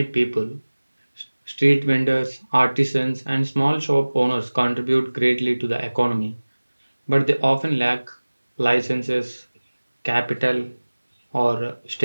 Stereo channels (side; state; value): both; inverted; correlation -1.00